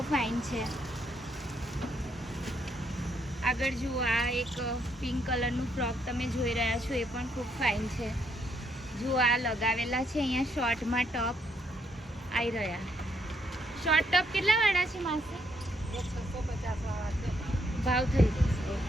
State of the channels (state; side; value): normal; both; correlation 0.73